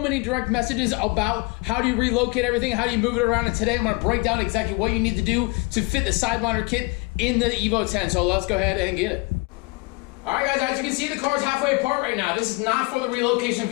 direct messages about how do you relocate everything, how do you move it around, and today I'm gonna break down exactly what you need to do to fit the Sidewinder kit in the Evo 10. So let's go ahead and get it. All right, guys, as you can see, the car is halfway apart right now. This is not for the relocation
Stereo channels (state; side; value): quieter; right; 27.0 dB